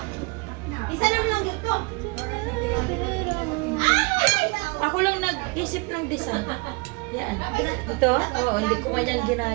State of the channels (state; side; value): quieter; left; 29.2 dB